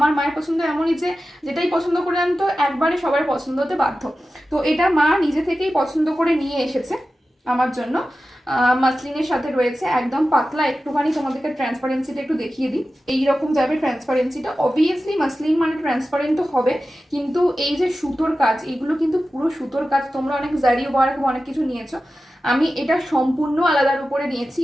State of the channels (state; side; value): normal; both; correlation 0.94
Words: মায়ের পছন্দ এমনই যে যেটাই পছন্দ করে আনতো একবারে সবার পছন্দ হতে বাধ্য। তো এটা মা নিজে থেকেই পছন্দ করে নিয়ে এসেছে আমার জন্য। মাসলিনের সাথে রয়েছে একদম পাতলা, একটুখানি তোমাদেরকে ট্রান্সপারেন্সিটা একটু দেখিয়ে দিই। এইরকম যাবে ট্রান্সপারেন্সিটা, অবভিয়াসলি মাসলিন মানে ট্রান্সপারেন্ট তো হবে, কিন্তু এই যে সুতোর কাজ, এগুলো কিন্তু পুরো সুতোর কাজ। তোমরা অনেক জারি ওয়ার্ক অনেক কিছু নিয়েছো, আমি এটা সম্পূর্ণ আলাদার উপরে নিয়েছি,